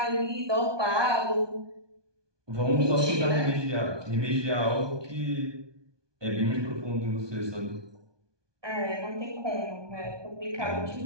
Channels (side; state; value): left; late; 1.2 ms